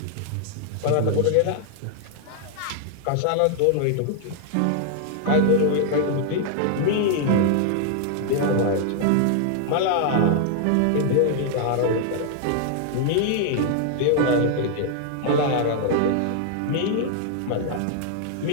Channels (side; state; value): both; different; correlation 0.00